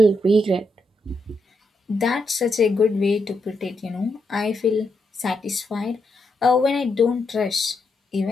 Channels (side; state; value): both; normal; correlation 0.82